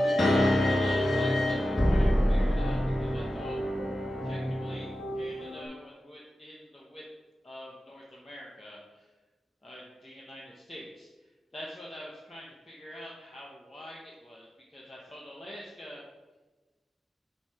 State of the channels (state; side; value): normal; both; correlation 0.93